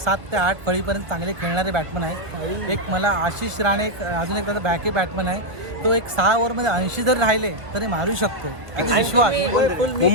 ते 8 फळीपर्यंत चांगले खेळणारे बॅट्समन आहेत. एक मला आशिष राणे अजून एक त्याचा बॅकअप बॅट्समन आहे. तो एक 6 ओव्हरमध्ये 80 जर राहिले तरी मारू शकतो. आणि विश्वास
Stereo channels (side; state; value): left; late; 1.6 ms